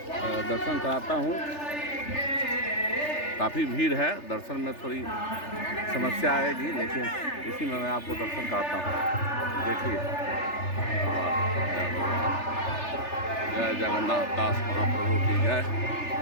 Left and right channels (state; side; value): late; right; 3.4 ms